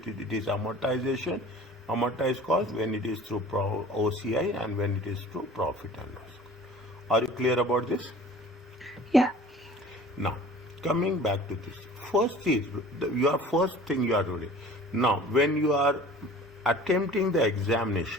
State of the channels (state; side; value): normal; both; correlation 0.45